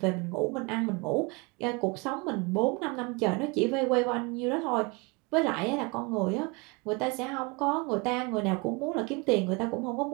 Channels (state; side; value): quieter; left; 28.3 dB